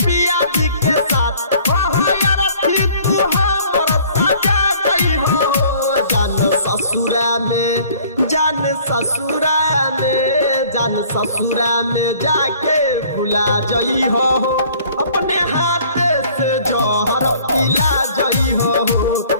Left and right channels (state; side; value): inverted; both; correlation -0.54